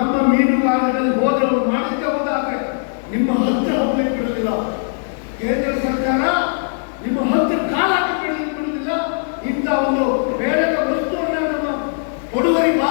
ಮೀನುಗಾರರಲ್ಲಿ ಹೋದವರು ಮಾಡಿದ್ದೆ ಹೋದಾದ್ರೆ ನಿಮ್ಮ ಹತ್ರ ಹೋಗ್ಲಿಕ್ಕೆ ಬಿಡುವುದಿಲ್ಲ. ಕೇಂದ್ರ ಸರ್ಕಾರ ನಿಮ್ಮ ಹತ್ತು ಕಾಲ ಬಿಡುವುದಿಲ್ಲ. ಇಂಥ ಒಂದು ಬೇಡದ ವಸ್ತುವನ್ನು ನಮ್ಮ ಕೊಡುವರಿ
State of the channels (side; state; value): right; silent; digital silence